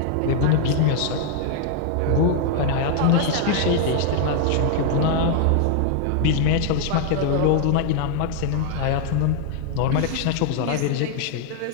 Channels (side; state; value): both; different; correlation 0.00